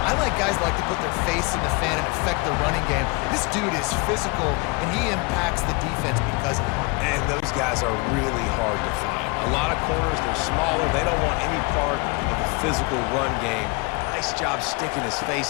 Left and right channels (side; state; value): right; quieter; 28.8 dB